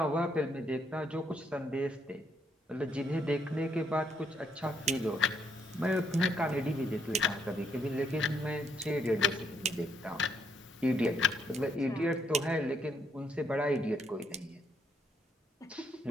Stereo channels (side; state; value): both; normal; correlation 0.73